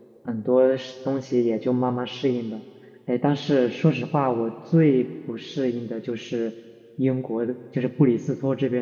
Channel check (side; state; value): both; identical; correlation 1.00